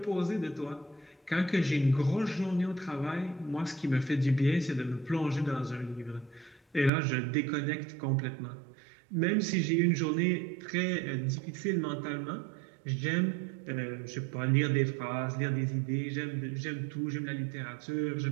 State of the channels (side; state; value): left; drops out; at 6.9 s